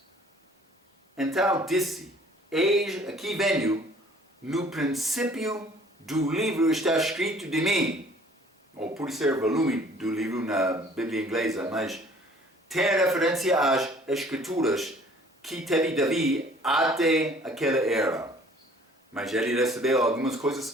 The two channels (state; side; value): normal; both; correlation 0.54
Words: Então disse, eis aqui venho, no princípio do livro está escrito de mim, ou por ser volume do livro na Bíblia inglesa, mas tem referência às escrituras que teve Davi até aquela era. Mas ele recebeu algumas